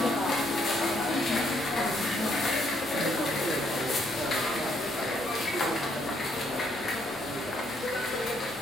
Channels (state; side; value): normal; both; correlation 0.71